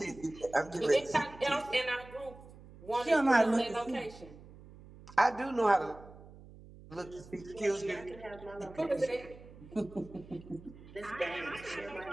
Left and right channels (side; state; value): right; noise; hum, 19 dB below the sound